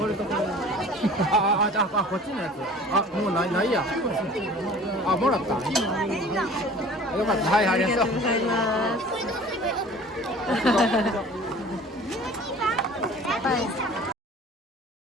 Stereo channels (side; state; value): both; normal; correlation 0.45